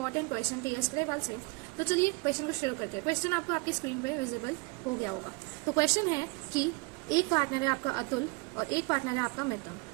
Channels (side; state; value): left; quieter; 27.7 dB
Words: क्वेश्चन टीएस ग्रेवाल से। तो चलिए क्वेश्चन को शुरू करते हैं। क्वेश्चन आपको आपकी स्क्रीन पे विजिबल हो गया होगा। तो क्वेश्चन है कि एक पार्टनर है आपका अतुल और एक पार्टनर है आपका मिथुन।